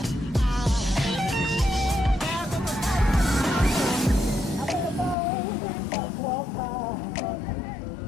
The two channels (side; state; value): right; drops out; at 5.2 s